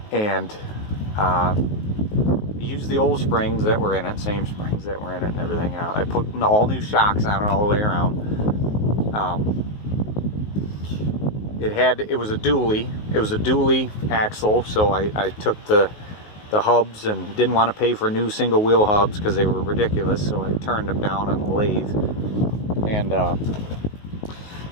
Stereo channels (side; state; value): right; late; 19 ms